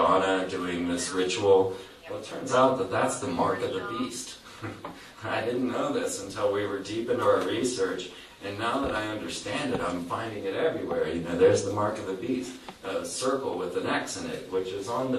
doing this ritual, well, it turns out that that's the mark of the beast. I didn't know this until we were deep into our research, and now that I understand it, I'm finding it everywhere. There's the mark of the beast, a circle with an X in it, which is on the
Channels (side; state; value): both; identical; correlation 1.00